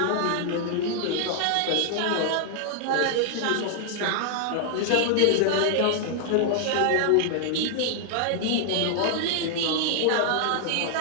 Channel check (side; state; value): both; different; correlation 0.00